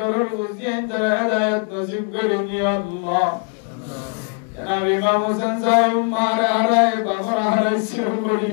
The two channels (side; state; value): right; quieter; 38.9 dB